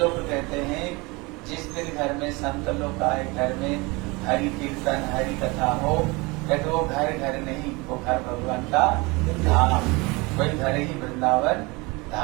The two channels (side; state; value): left; quieter; 25.4 dB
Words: कहते हैं जिस दिन घर में संत लोग आए, घर में हरि कीर्तन हरि कथा हो, कहते वो घर घर नहीं, वो घर भगवान का धाम, वही घर ही वृंदावन